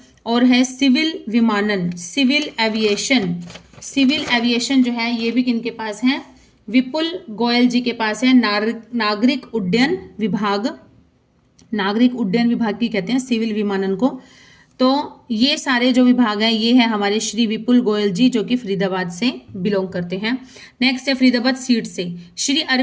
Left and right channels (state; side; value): identical; both; correlation 1.00